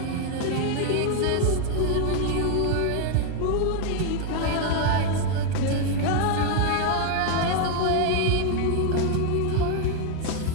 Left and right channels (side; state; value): both; different; correlation 0.01